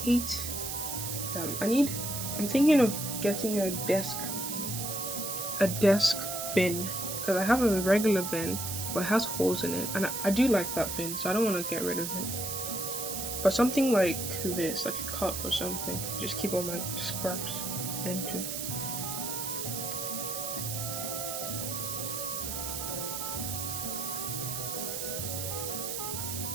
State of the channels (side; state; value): right; noise; hiss, 4 dB below the sound